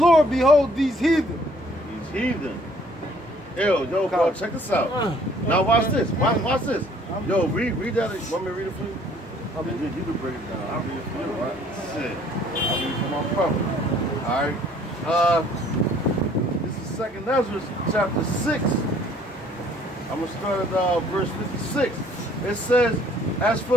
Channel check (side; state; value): both; normal; correlation 0.58